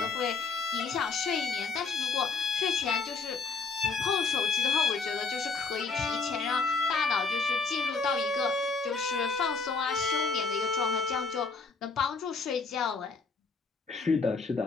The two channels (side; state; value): right; quieter; 4.5 dB